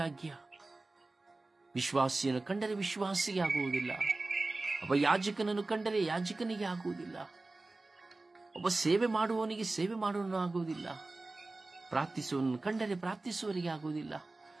ವಿಶ್ವಾಸಿಯನ್ನು ಕಂಡರೆ ವಿಶ್ವಾಸಿಗೆ ಆಗುವುದಿಲ್ಲ, ಒಬ್ಬ ಯಾಜಕನನ್ನು ಕಂಡರೆ ಯಾಜಕನಿಗೆ ಆಗುವುದಿಲ್ಲ, ಒಬ್ಬ ಸೇವೆ ಮಾಡುವವನಿಗೆ ಸೇವೆ ಮಾಡುವವನು ಆಗುವುದಿಲ್ಲ, ಪ್ರಾರ್ಥಿಸುವವನನ್ನು ಕಂಡರೆ ಪ್ರಾರ್ಥಿಸುವವರಿಗೆ ಆಗುವುದಿಲ್ಲ,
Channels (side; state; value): left; quieter; 3.2 dB